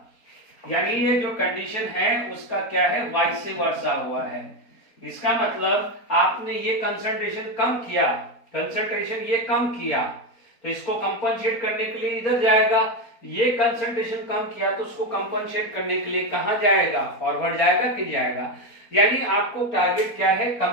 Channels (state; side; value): late; right; 4.3 ms